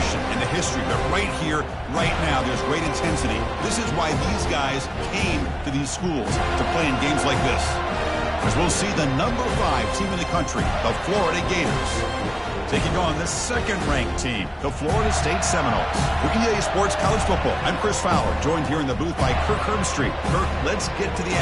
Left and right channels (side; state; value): both; identical; correlation 1.00